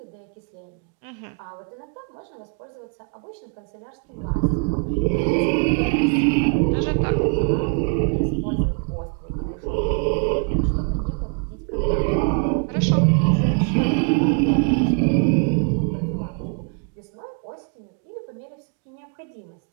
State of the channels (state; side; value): quieter; left; 38.6 dB